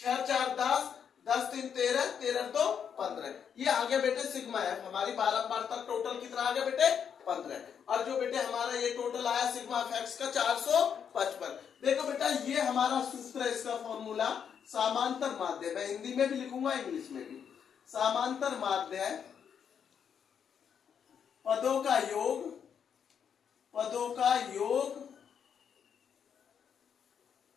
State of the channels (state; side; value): quieter; right; 7.7 dB